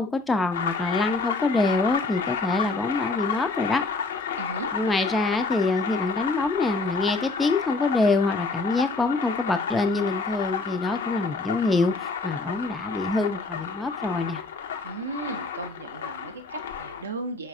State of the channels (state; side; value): quieter; right; 3.4 dB